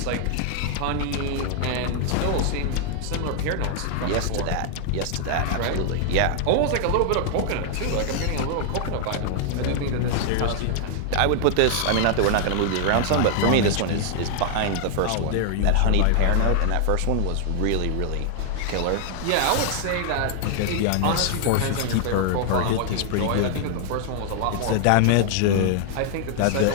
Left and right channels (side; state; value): both; different; correlation 0.00